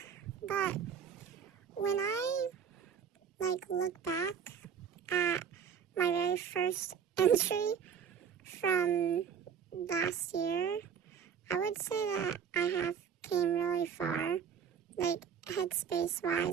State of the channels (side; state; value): left; quieter; 7.5 dB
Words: But when I look back at my very first entry from last year, I would say that I have came really far, headspace